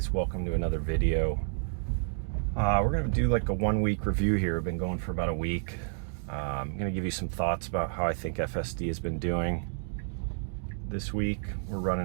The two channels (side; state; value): left; silent; 58 dB below the other